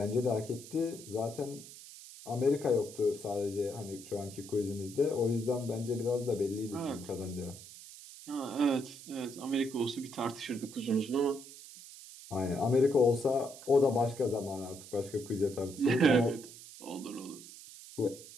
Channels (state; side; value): noise; right; hiss, 16 dB below the sound